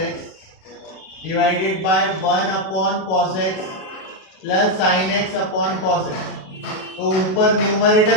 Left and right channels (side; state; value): right; late; 37 ms